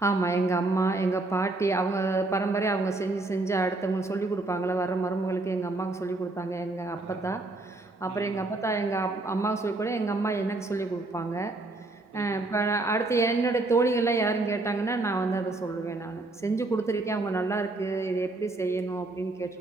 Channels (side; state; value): left; quieter; 3.0 dB